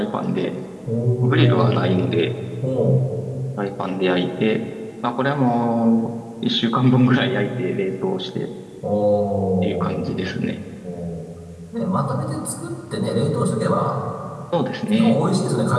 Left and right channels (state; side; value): identical; both; correlation 1.00